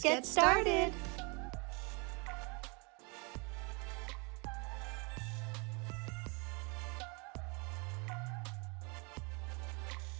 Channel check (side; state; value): left; quieter; 31.1 dB